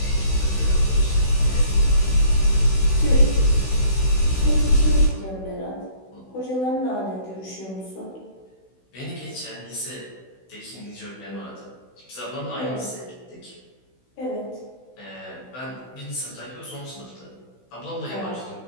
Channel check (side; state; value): right; late; 16 ms